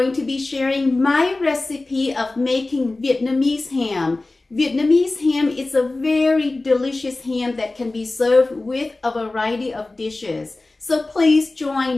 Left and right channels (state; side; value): quieter; right; 3.1 dB